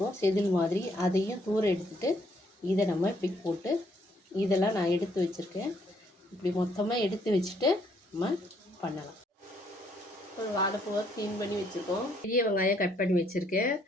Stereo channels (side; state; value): both; normal; correlation 0.69